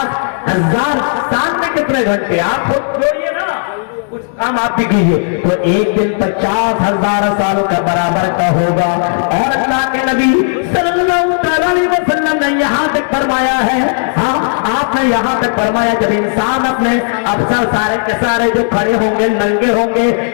साल में कितने घंटे, आप खुद जोड़िए ना, कुछ काम आप भी कीजिए। तो एक दिन 50,000 साल का बराबर का होगा। और अल्लाह के नबी सल्लल्लाहु अलैहि वसल्लम ने यहाँ तक फरमाया है, हाँ आपने यहाँ तक फरमाया, जब इंसान अपने अफसर सारे के सारे जो खड़े होंगे नंगे होंगे,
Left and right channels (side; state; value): right; silent; digital silence